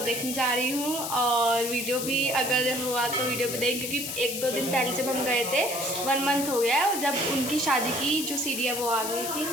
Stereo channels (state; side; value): noise; left; hiss, 5 dB below the sound